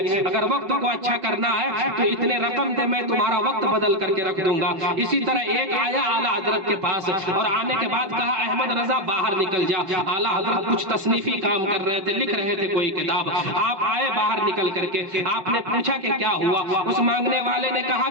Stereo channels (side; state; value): left; late; 5.8 ms